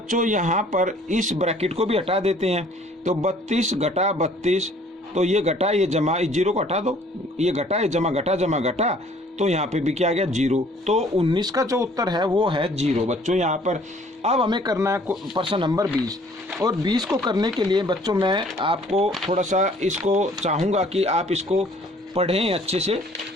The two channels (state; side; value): normal; both; correlation 0.57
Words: यहाँ पर इस ब्रैकेट को भी हटा देते हैं। तो 32 घटा 32, तो ये घटा ये जमा, इस 0 को हटा दो, ये घटा ये जमा घटा, तो यहाँ पे भी क्या आ गया 0। तो 19 का जो उत्तर है वो है 0 बच्चों यहाँ पर। अब हमें करना है प्रश्न नंबर 20, और 20 को करने के लिए बच्चों मैं आपको थोड़ा सा इसको चाहूँगा कि आप इसको पढ़ें अच्छे से,